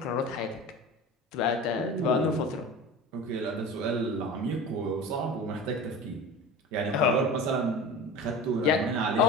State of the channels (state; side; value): normal; both; correlation 0.33